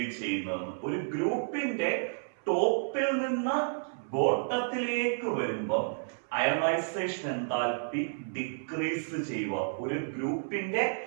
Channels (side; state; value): left; silent; 57 dB below the other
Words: ചെയ്യുന്നതെന്ന്. ഒരു ഗ്രൂപ്പിന്റെ ടോപ്പിൽ നിന്ന് ബോട്ടത്തിലേക്ക് വരുമ്പോൾ അയണൈസേഷൻ എൻതാൽപ്പി ഡിക്രീസ് ചെയ്യുക. ഒരു ഗ്രൂപ്പിന്റെ